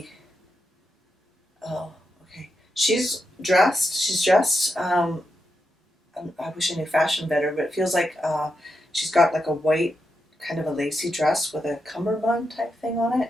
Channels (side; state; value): both; normal; correlation 0.85